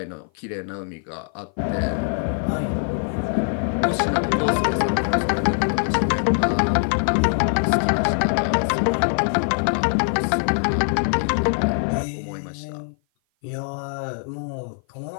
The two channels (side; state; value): right; silent; 56 dB below the other